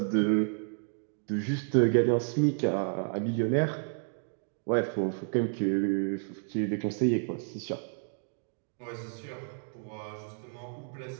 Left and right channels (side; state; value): left; silent; 57 dB below the other